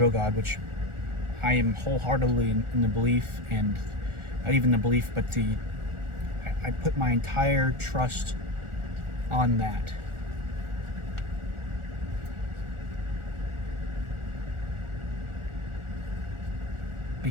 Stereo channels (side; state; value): left; late; 1.4 ms